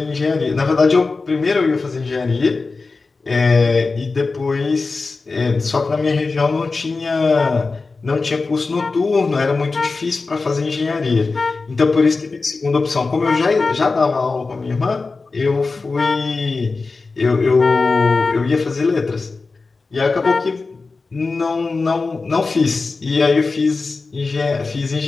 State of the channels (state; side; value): quieter; right; 4.0 dB